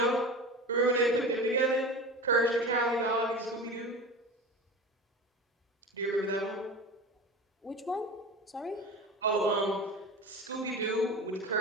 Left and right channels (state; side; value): normal; both; correlation 0.31